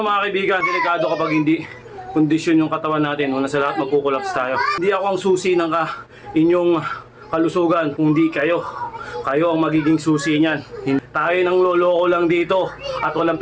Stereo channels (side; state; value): both; identical; correlation 1.00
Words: kaibigan, delikado kapag hindi kondisyon yung katawan natin. Una sa lahat, magkukulaps tayo. Hindi ako ang susi ng inyong kalusugan, kundi kayo. Kayo ang magiging susi niyan. Tayo nang loloko lang dito at walang